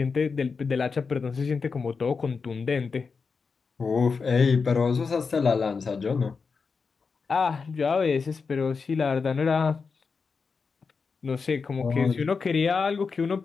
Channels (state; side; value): quieter; right; 5.0 dB